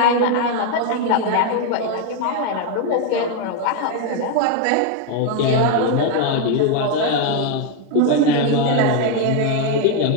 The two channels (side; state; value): both; different; correlation 0.01